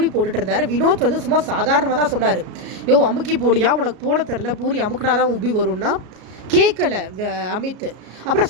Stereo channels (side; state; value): left; late; 33 ms